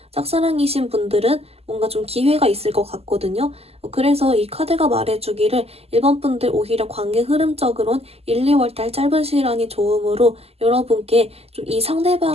짝사랑이신 분들은 뭔가 좀 기회가 있을 것 같거든요. 그래서 이 카드가 말해주기를 1번 분들 오히려 관계 흐름적으론 1, 2월 달 짧은 시간이 좋으므로 여러분께 좀 이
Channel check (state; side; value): late; left; 0.29 ms